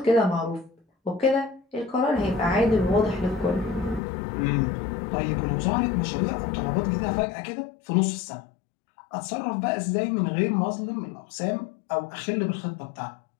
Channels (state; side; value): drops out; right; at 4.0 s